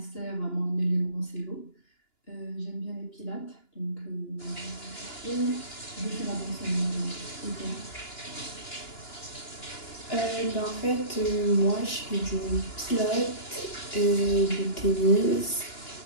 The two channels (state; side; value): late; right; 2.9 ms